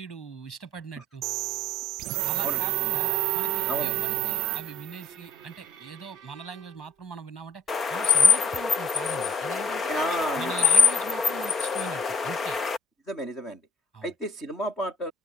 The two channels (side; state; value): both; normal; correlation 0.58